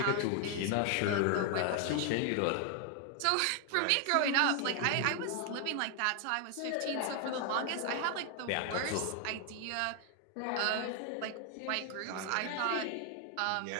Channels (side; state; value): both; different; correlation 0.00